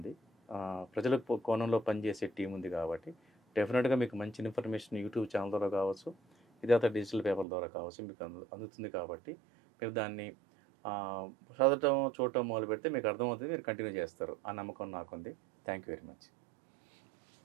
ప్రజల కోణంలో పనిచేసే టీం ఉంది కాబట్టి డెఫినెట్గా మీకు మంచి ఇన్ఫర్మేషన్ యూట్యూబ్ ఛానల్ ద్వారా కావచ్చు, విధాత డిజిటల్ పేపర్ ద్వారా కావచ్చు మీకు అందుతుంది. కాబట్టి మీరు దాన్ని చదవటం చూడటం మొదలు పెడితే మీకు అర్థమవుతుంది, మీరు కంటిన్యూ చేస్తారు. ఆ నమ్మకం నాకుంది. Thank you very much.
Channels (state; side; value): drops out; left; at 7.5 s